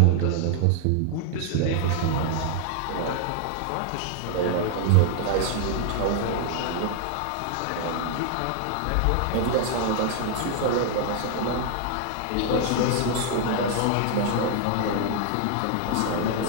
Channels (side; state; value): both; different; correlation 0.00